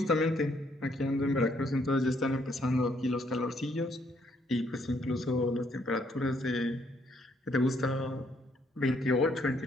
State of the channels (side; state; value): both; normal; correlation 0.70